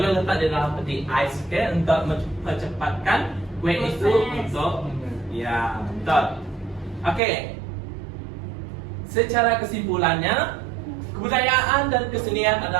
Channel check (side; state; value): left; drops out; at 7.2 s